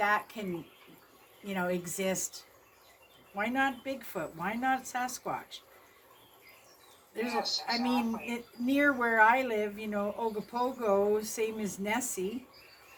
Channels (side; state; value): both; identical; correlation 1.00